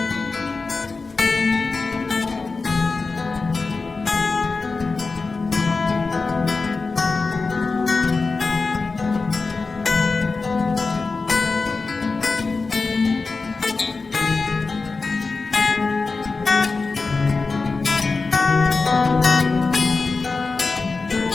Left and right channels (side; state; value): right; quieter; 4.0 dB